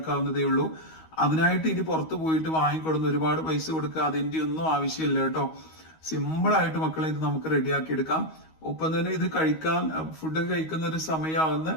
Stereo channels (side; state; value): right; late; 13 ms